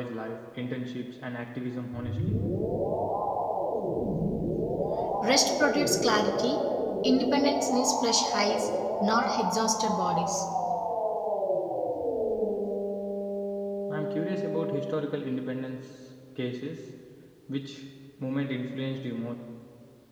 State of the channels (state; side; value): identical; both; correlation 1.00